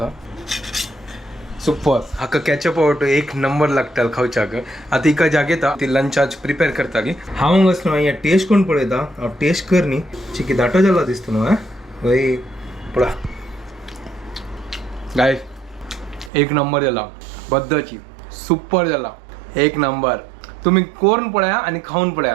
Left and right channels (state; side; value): drops out; left; at 16.3 s